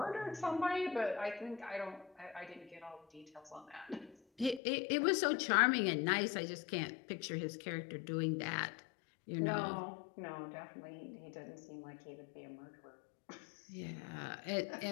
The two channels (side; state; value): right; drops out; at 4.6 s